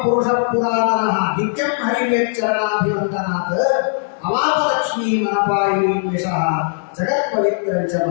ಪುರುಷ ಪುರಾತನ ನಿತ್ಯಂ ಹರಿವೇಚ್ಚರಣಾಭಿವಂದನಾತ್ ಅವಾಪಲಕ್ಷ್ಮೀ ಮನಪಾಯಿನಿ ವಿಷಃ ಜಗತ್ ಪವಿತ್ರಂಚ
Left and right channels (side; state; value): right; silent; digital silence